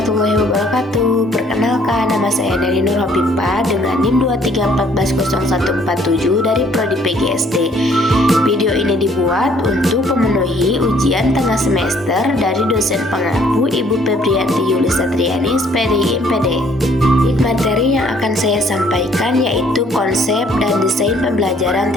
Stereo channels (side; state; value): both; normal; correlation 0.62